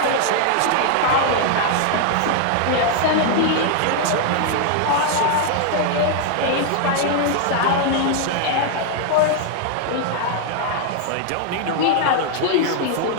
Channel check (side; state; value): both; different; correlation 0.00